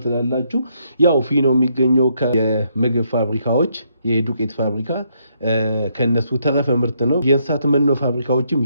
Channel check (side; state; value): both; inverted; correlation -0.74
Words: ትላላችሁ ያው ፊኖ የሚገኘው ከመግብ ፋብሪካዎች የዱቄት ፋብሪካ ከነሱ ተረፈ ምርት ነው የእንስሳት መኖ ፋብሪካዎችም